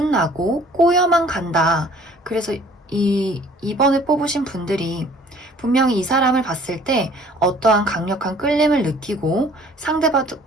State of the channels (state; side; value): normal; both; correlation 0.53